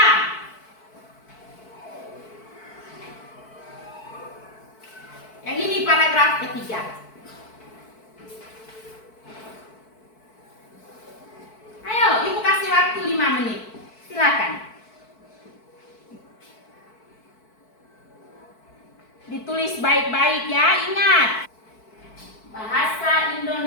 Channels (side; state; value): right; late; 4.6 ms